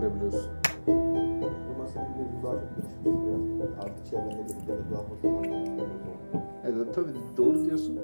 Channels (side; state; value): both; inverted; correlation -1.00